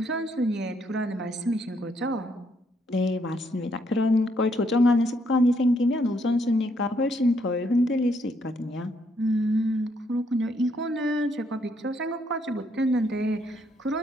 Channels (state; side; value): normal; both; correlation 0.72